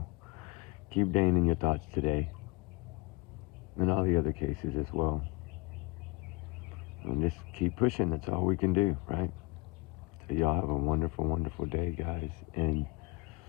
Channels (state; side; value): quieter; right; 23.8 dB